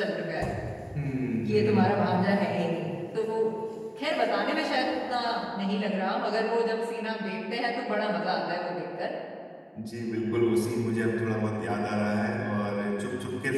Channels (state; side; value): identical; both; correlation 1.00